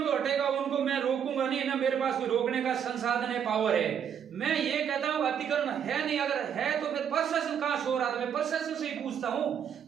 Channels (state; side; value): quieter; left; 8.3 dB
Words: तो हटेगा, उनको मैं रोकूंगा नहीं, ना मेरे पास कोई रोकने का संसाधन है, पावर है। मैं ये कहता हूँ अतिक्रमण है नहीं, अगर है तो फिर प्रशासन कहाँ सो रहा था? मैं प्रशासन से ही पूछता हूँ,